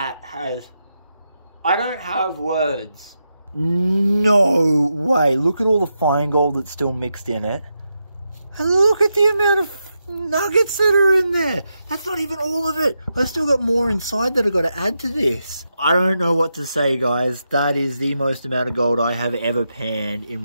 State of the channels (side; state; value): both; inverted; correlation -0.86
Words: has... I don't have words. No way. Look at all the fine gold that's still mixed in it. And look at the amount of nuggets that are in there. That's not even all of it. I've still got more inside that I've got to add to this. I don't know what to say, guys. That is the most amount of gold I have ever panned